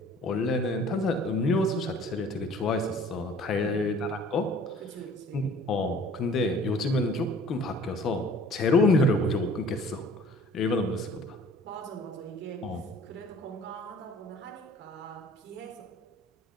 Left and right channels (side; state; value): both; normal; correlation 0.51